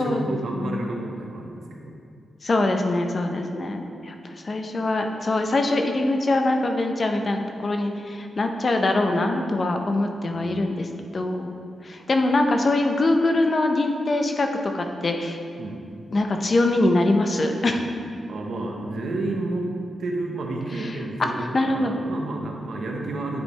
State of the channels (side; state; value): both; normal; correlation 0.90